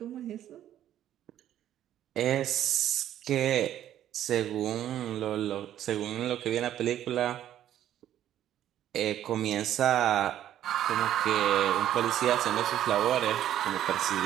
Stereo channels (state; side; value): quieter; left; 11.6 dB